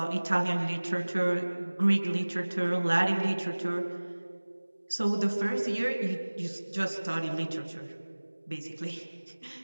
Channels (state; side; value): inverted; both; correlation -1.00